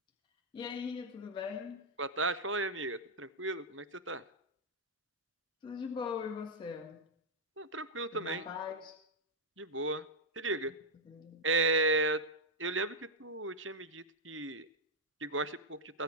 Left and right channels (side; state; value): both; normal; correlation -0.03